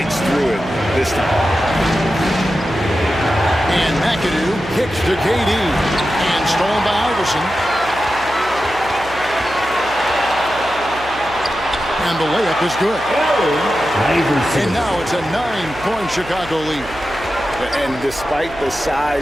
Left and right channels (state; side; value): noise; right; hum, 17 dB below the sound